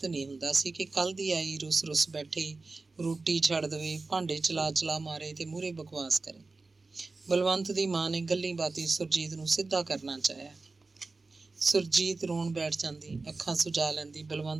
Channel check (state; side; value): quieter; left; 3.7 dB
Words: ਨਹੀਂ ਹੁੰਦਾ ਸੀ ਕਿ ਕੱਲ੍ਹ ਦੀ ਆਈ ਰੁੱਸ ਬੈਠੇ, ਰੋਟੀ ਛੱਡ ਦੇਵੇ, ਭਾਂਡੇ ਚਲਾ ਮਾਰੇ ਤੇ ਮੂਹਰੇ ਬਕਵਾਸ ਕਰੇ। ਬਲਵੰਤ ਦੀ ਮਾਂ ਨੇ ਗੱਲੀਂ ਬਾਤੀਂ ਸੁਰਜੀਤ ਨੂੰ ਸਿੱਧਾ ਕਰਨਾ ਚਾਹਿਆ। ਸੁਰਜੀਤ ਰੋਣ ਬੈਠ ਜਾਂਦੀ, ਅੱਖਾਂ ਸੁਜਾ ਲੈਂਦੀ।